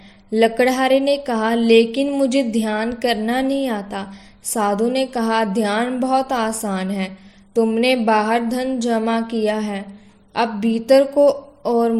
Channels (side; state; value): both; identical; correlation 1.00